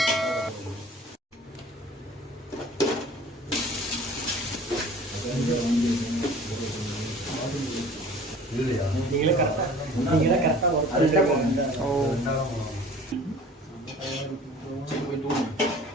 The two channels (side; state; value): both; normal; correlation 0.46